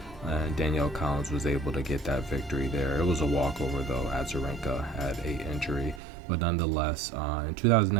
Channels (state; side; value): drops out; left; at 6.0 s